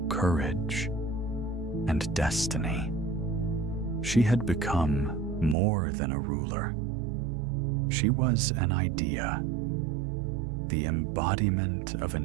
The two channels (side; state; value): left; drops out; at 5.6 s